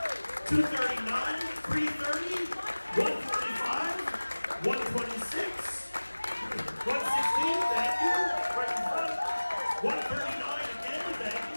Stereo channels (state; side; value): inverted; both; correlation -1.00